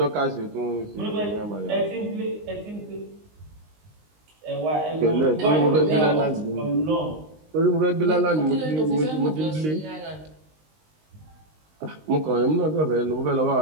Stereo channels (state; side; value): late; left; 19 ms